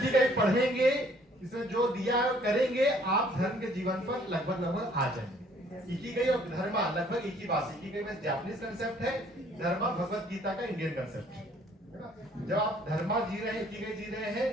पढ़ेंगे, इसमें जो दिया करेंगे, आप धर्म के जीवन पर लगभग आ जाएंगे। इकिगाई और धर्मा लगभग एक ही बात है। इकिगाई में जापानीज कंसेप्ट है, धर्मा भगवत गीता का इंडियन कंसेप्ट है ना। जब आप धर्मा जी रहे हैं, इकिगाई जी रहे हैं,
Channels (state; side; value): normal; both; correlation 0.60